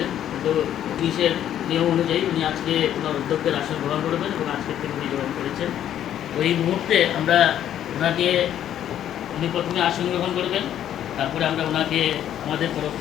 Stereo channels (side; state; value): right; quieter; 10.8 dB